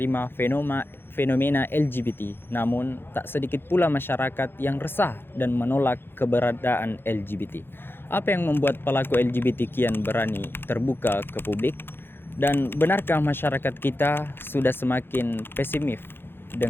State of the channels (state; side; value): late; right; 0.10 ms